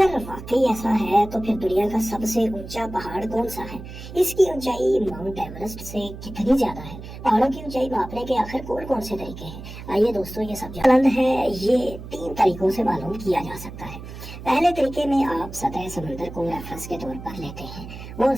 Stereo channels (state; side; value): noise; right; hum, 12 dB below the sound